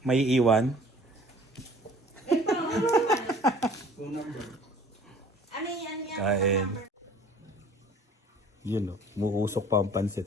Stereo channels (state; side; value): normal; both; correlation 0.50